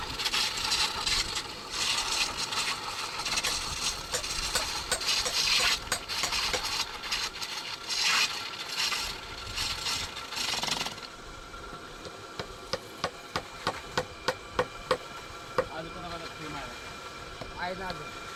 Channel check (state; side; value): identical; both; correlation 1.00